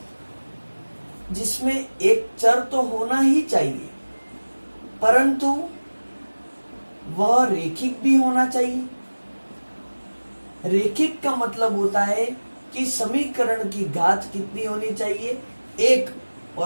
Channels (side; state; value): both; inverted; correlation -1.00